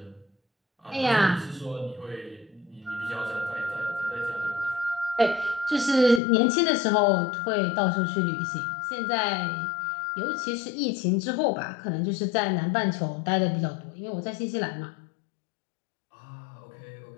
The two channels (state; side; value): drops out; right; at 6.2 s